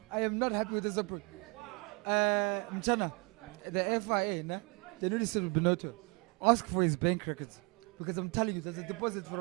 I am not happy with this approach. Mchana, the FIA, nah, they need to sit with Benotto. Ask for his bank records. Because I'm telling you, there's a deposit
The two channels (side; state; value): left; quieter; 30.5 dB